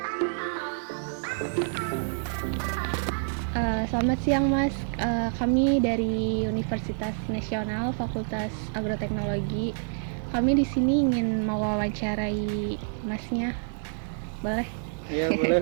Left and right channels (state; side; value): silent; left; 60 dB below the other